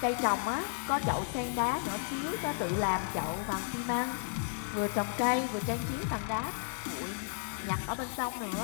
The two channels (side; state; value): right; silent; digital silence